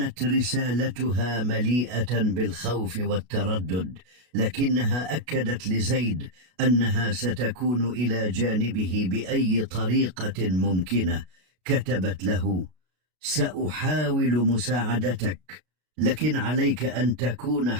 رسالتها مليئة بالخوف والتردد، لكنها أكدت لزيد أنها ستكون إلى جانبه بأي طريقة ممكنة. كتبت له: سأحاول مساعدتك، لكن عليك أن تكون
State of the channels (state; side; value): late; left; 33 ms